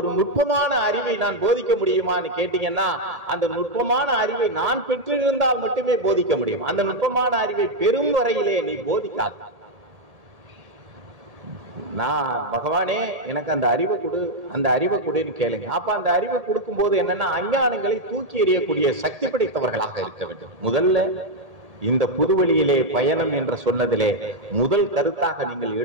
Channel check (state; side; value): late; left; 1.7 ms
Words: நுட்பமான அறிவை நான் போதிக்க முடியுமான்னு கேட்டீங்கன்னா, அந்த நுட்பமான அறிவை நான் பெற்றிருந்தால் மட்டுமே போதிக்க முடியும். அந்த நுட்பமான அறிவை பெரும் வரையிலே நீ போதிக்காத. நான் பகவானே எனக்கு அந்த அறிவை கொடு, அந்த அறிவை கொடுன்னு கேளுங்க. அப்ப அந்த அறிவை கொடுக்கும் போது என்னன்னா, அஞ்ஞானங்களை தூக்கி எறியக்கூடிய சக்தி படைத்தவர்களாக இருக்க வேண்டும். முதல்ல இந்த புதுவெளியிலே பயணம் என்று சொன்னதிலே முதல் கருத்தாக நீங்கள்